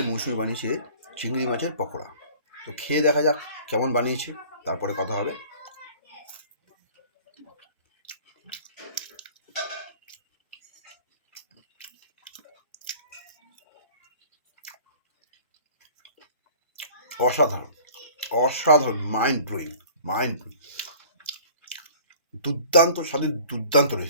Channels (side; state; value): both; inverted; correlation -0.48